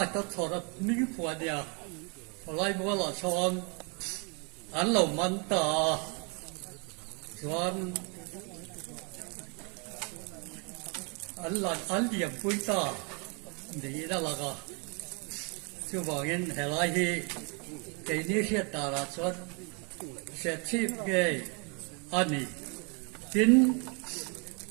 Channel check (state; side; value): quieter; left; 34.2 dB